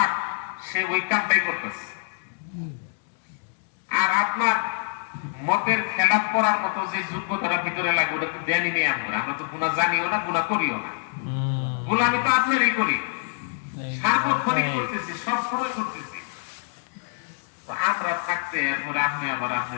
সে ওই কামটাই করতেছে। আর আপনার মতের খেলাফ করার মতো যে যোগ্যতাটা ভিতরে লাগবে ওটা তো দেনই নেই আমরা, আমরা তো গুনাহ জানিও না, গুনাহ করিও না। গোলামি তো আপনারই করি, সার্বক্ষণিক করতেছি, সবসময় করতেছি। তো আমরা থাকতে এরপরে আপনি আবার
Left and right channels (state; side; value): silent; right; digital silence